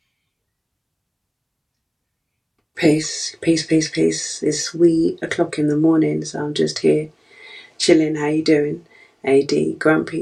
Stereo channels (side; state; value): both; identical; correlation 1.00